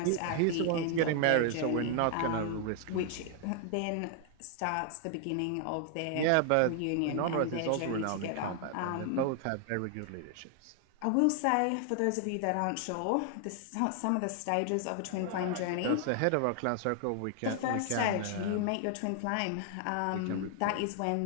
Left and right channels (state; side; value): different; both; correlation 0.00